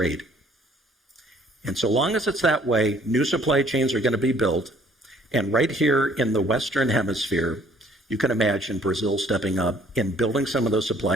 And so long as it's that way, new supply chains are going to be built. And right here in the Western Hemisphere, you can imagine Brazil stepping up and building some of those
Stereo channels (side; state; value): both; normal; correlation 0.59